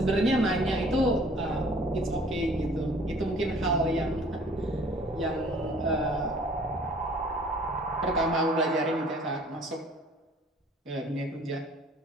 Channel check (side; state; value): both; normal; correlation 0.54